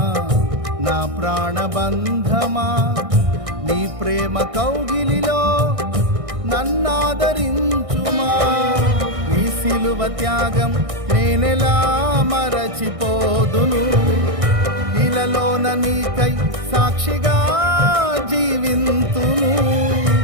నా ప్రాణబంధమా నీ ప్రేమ కౌగిలిలో నన్నాదరించుమా. నీ సిలువ త్యాగం నేనెలా మరచిపోదును, ఇలలోన నీకై సాక్షిగా జీవింతును.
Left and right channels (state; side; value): late; left; 1.6 ms